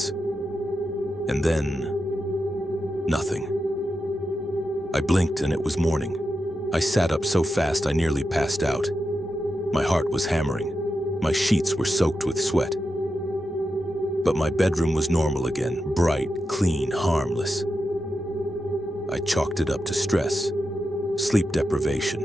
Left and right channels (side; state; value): both; normal; correlation 0.88